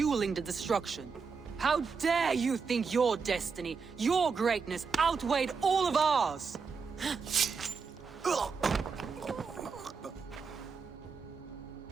the destruction. How dare you think your destiny, your greatness, outweighed all of ours?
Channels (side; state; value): left; quieter; 5.4 dB